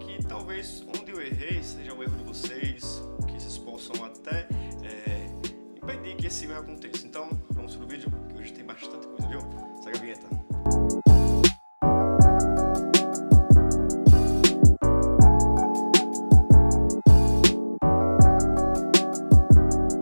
talvez onde eu errei seja o erro de vocês, que vocês possam até impedir que esse erro aconteça. Então vamos pro vídeo, que hoje tem bastante coisa, viu? Segue a vinheta.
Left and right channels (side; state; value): both; inverted; correlation -1.00